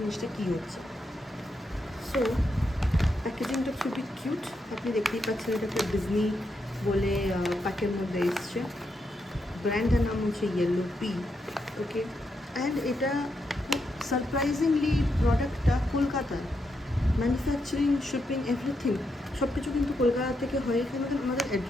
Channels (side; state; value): both; normal; correlation 0.82